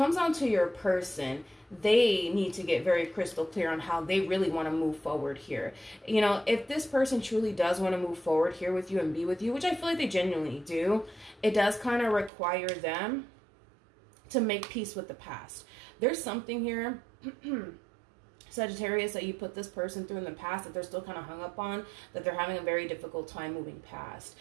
on to your person, they need to get very crystal clear on how they really want to move forward here. You know, if this person truly does want to move forward here with you and be with you, which I feel like they genuinely do, it does kind of require them to make peace with the past. There's something here Sagittarius, that you put this person through in the past that they're still kind of hung up on, that they're having a very difficult time moving past.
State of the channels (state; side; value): drops out; left; at 12.3 s